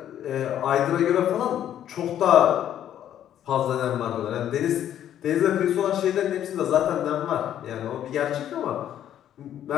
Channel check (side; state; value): right; quieter; 10.8 dB